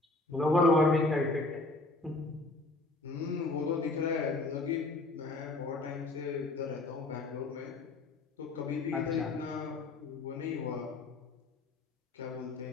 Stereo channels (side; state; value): right; quieter; 3.1 dB